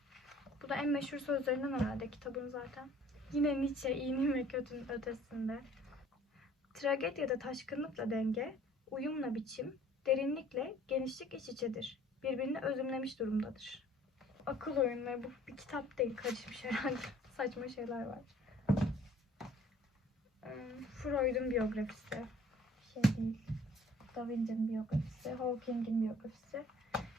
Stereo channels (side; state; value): both; normal; correlation 0.54